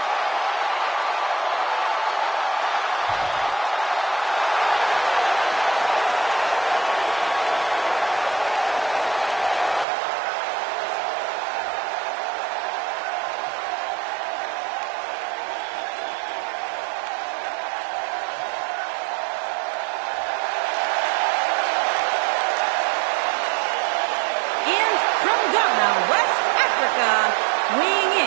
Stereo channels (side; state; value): left; drops out; at 9.9 s